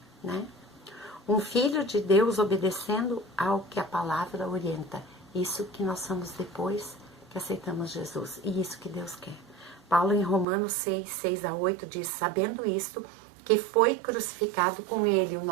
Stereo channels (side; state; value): left; drops out; at 10.5 s